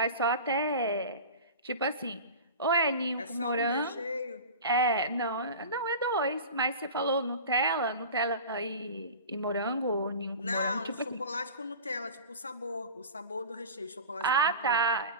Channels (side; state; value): both; inverted; correlation -0.35